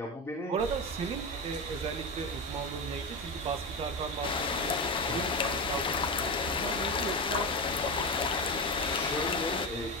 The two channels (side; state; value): both; normal; correlation 0.17